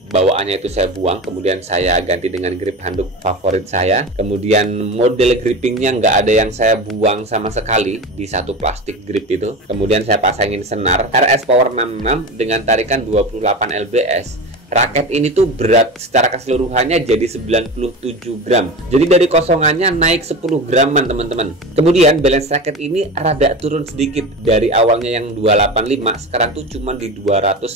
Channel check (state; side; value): normal; both; correlation 0.28